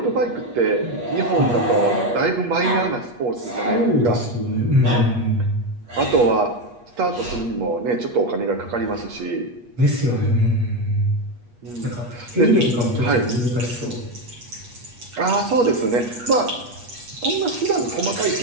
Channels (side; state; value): left; late; 8.3 ms